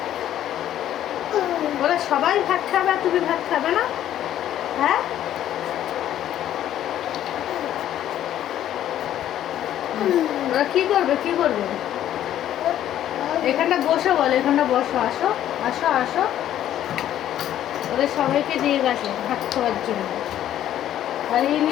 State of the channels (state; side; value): quieter; right; 11.7 dB